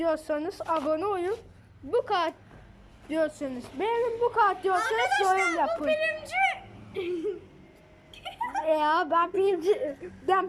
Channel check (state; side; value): identical; both; correlation 1.00